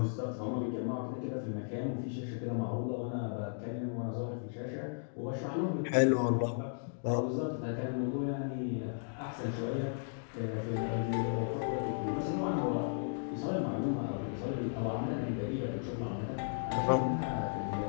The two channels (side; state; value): right; silent; digital silence